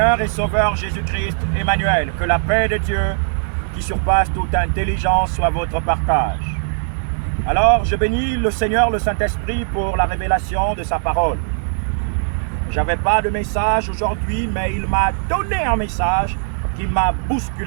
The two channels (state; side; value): silent; left; 66 dB below the other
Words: et Sauveur Jésus-Christ, Emmanuel. Que la paix de Dieu, qui surpasse toute intelligence, soit votre partage. Alors, je bénis le Seigneur, le Saint-Esprit, pour la révélation de sa parole. J'avais pas de message aujourd'hui, mais il m'a donné un message qui m'a